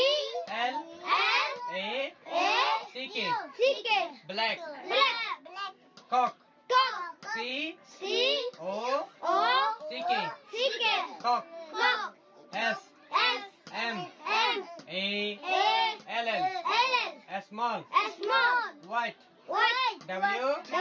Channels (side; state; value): both; identical; correlation 1.00